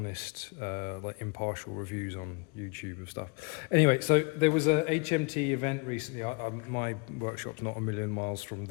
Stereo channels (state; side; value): quieter; right; 30.8 dB